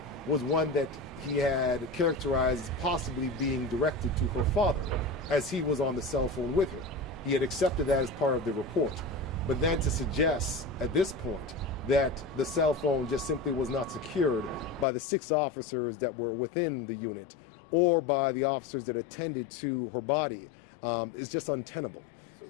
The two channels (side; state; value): right; drops out; at 14.9 s